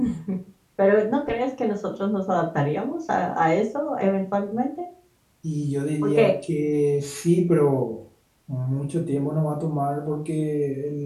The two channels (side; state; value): both; identical; correlation 1.00